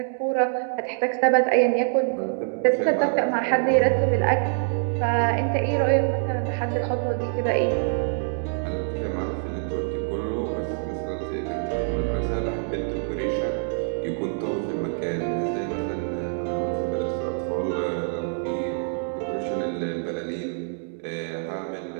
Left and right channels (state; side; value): silent; left; digital silence